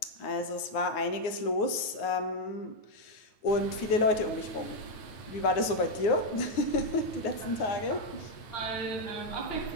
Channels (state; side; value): late; right; 9.6 ms